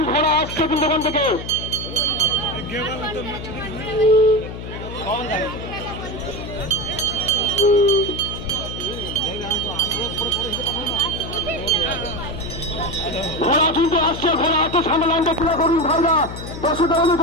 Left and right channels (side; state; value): left; noise; hum, 9 dB below the sound